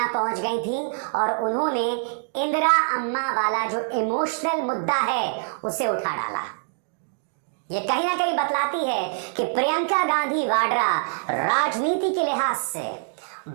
पहुंच गई थी और उन्होंने इंदिरा अम्मा वाला जो इमोशनल मुद्दा है उसे उठा डाला। ये कहीं ना कहीं बतलाती है कि प्रियंका गांधी वाड्रा राजनीति के लिहाज से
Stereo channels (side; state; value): left; silent; digital silence